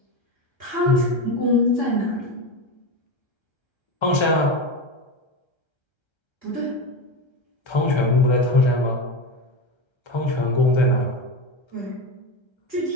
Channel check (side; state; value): right; late; 1.3 ms